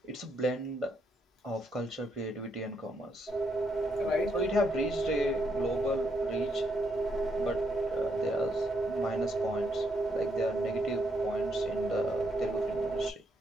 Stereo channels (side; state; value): both; normal; correlation 0.76